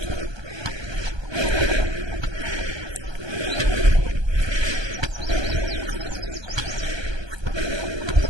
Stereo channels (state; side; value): late; left; 1.2 ms